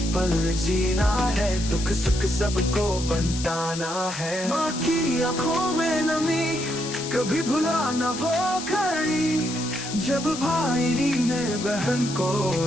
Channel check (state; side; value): noise; left; hiss, 9 dB below the sound